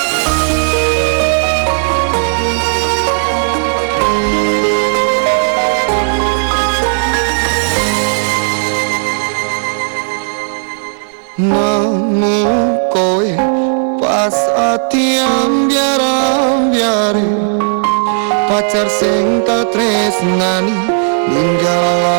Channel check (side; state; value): left; silent; digital silence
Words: Nemu kowe pas ati ambyar-ambyare pacar sing tak tresnani